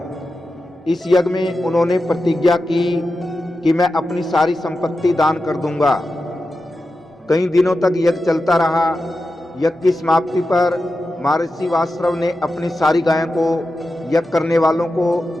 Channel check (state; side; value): normal; both; correlation 0.91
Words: इस यज्ञ में उन्होंने प्रतिज्ञा की कि मैं अपनी सारी संपत्ति दान कर दूंगा। कई दिनों तक यज्ञ चलता रहा। यज्ञ की समाप्ति पर महर्षि वासरव ने अपनी सारी गायों को यज्ञ करने वालों को